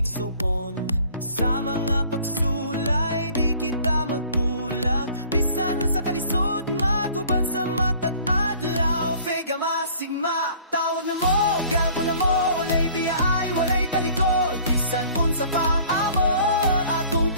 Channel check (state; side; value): inverted; both; correlation -0.52